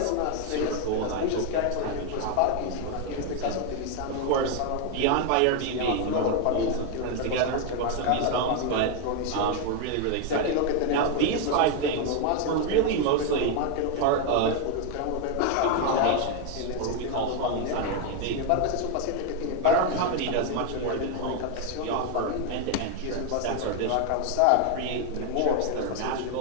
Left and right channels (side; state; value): both; different; correlation 0.01